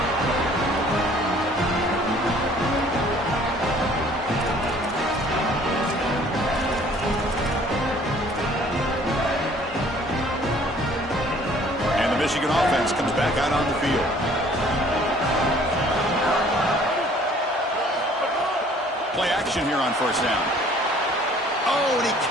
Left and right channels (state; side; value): normal; both; correlation 0.55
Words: And the Michigan offense comes back out on the field. Play action here on first down. Oh, and he